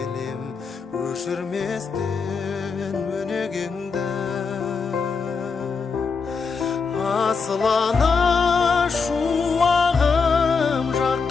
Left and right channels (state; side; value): quieter; right; 5.1 dB